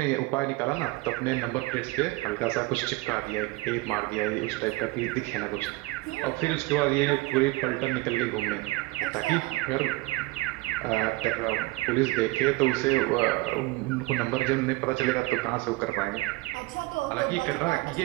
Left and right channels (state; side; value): quieter; left; 21.9 dB